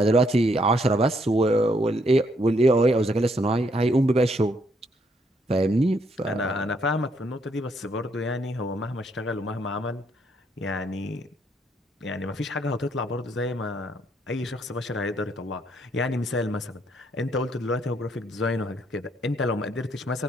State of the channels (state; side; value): normal; both; correlation 0.71